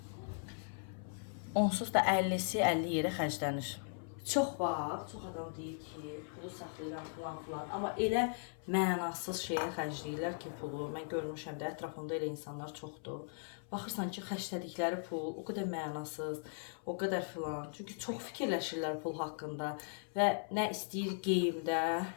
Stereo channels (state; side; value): silent; right; 52 dB below the other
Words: onsuz da 50'si 50 yerə xərclənir. Çox var, çox adam deyir ki, pulu saxlayıram falan. Amma elə mənasız şeyə xərcləyirlər ki, pulu. Mən görmüşəm də, ətrafımda elə insanlar çoxdur. Baxırsan ki, xərclədikləri pul o qədər mənasız, o qədər filan. Çünki çox fikirləşirlər pul haqqında və nə istəyir geyimdə,